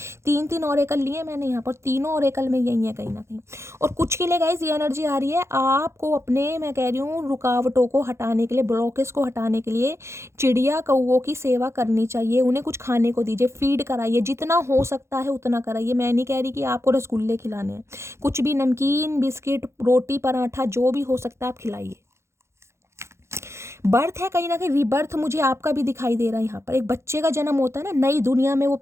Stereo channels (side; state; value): left; late; 0.13 ms